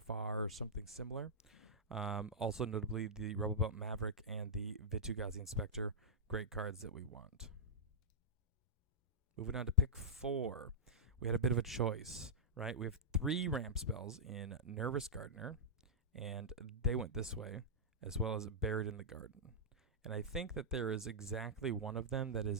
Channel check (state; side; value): normal; both; correlation -0.14